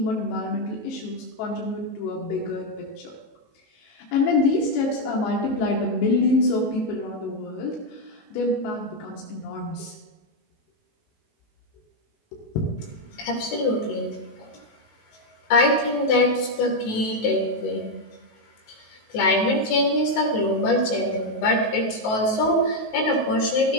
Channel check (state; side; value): late; right; 19 ms